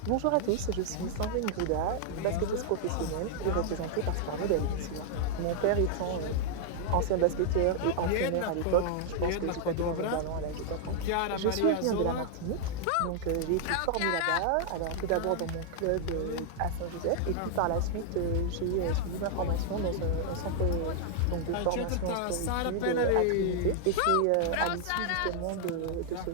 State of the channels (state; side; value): different; both; correlation -0.01